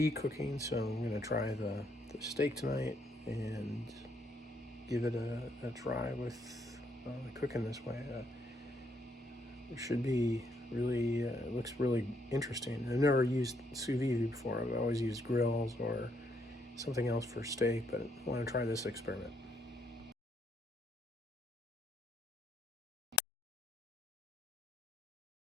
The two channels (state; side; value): normal; both; correlation 0.73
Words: cooking, so I'm going to try the steak tonight and give it a try with cooking this way. It should be really, it looks really interesting. I've never used sous vide before. I've always used grills or something else for steak, but I want to try this experiment.